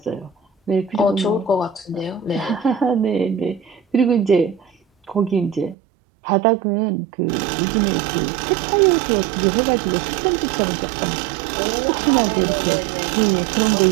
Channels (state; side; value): drops out; left; at 5.8 s